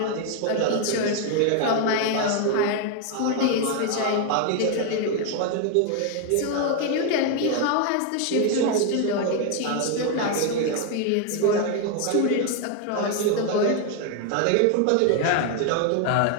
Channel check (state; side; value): different; both; correlation 0.01